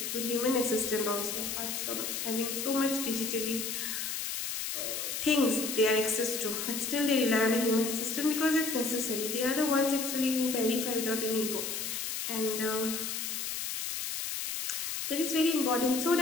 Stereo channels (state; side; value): noise; left; hiss, 3 dB below the sound